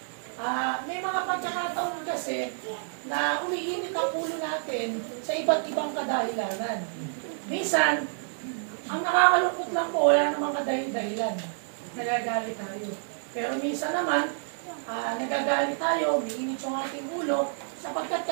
May mga pagkakataon kasi na umiinit ang ulo natin sa iba't ibang kadahilanan. Minsan, ang nakakalungkot lang po, wala namang kadahilan. Nagagalit tayo. Pero minsan naman, nagagalit tayo, umiinit yung ating ulo, sapagkat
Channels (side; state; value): left; silent; 59 dB below the other